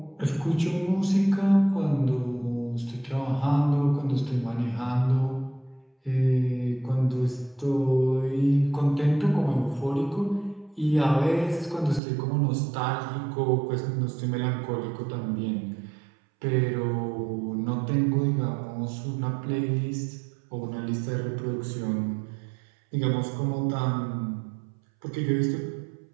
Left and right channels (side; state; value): left; drops out; at 12.0 s